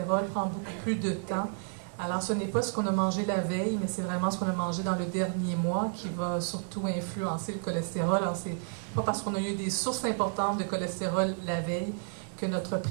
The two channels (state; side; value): silent; left; 57 dB below the other